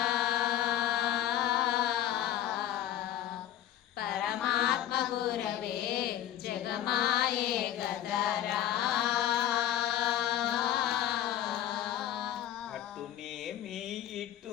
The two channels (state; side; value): quieter; right; 12.0 dB